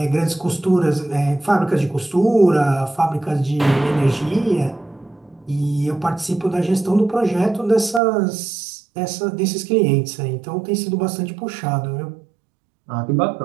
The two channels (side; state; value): left; drops out; at 8.0 s